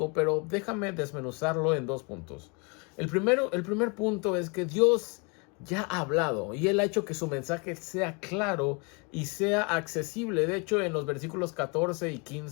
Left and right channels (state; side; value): quieter; right; 32.4 dB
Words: pero déjame desmenuzarlo en dos puntos. El primer punto es que Dios ya ha hablado y Él ha hecho que su mensaje sea claro y sea accesible. De hecho, en los versículos 14 y